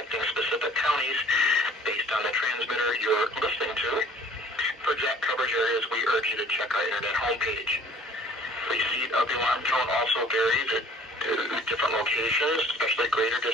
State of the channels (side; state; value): both; normal; correlation 0.52